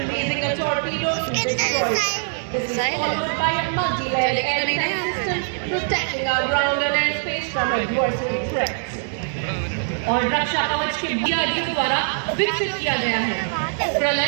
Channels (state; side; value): silent; left; 64 dB below the other